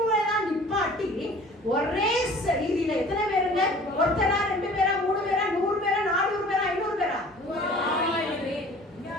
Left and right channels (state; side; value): normal; both; correlation 0.47